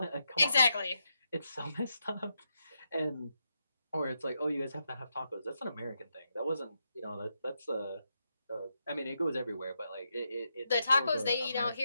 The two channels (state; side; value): inverted; both; correlation -0.83